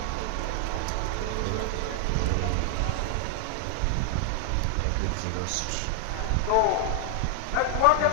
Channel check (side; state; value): both; different; correlation 0.00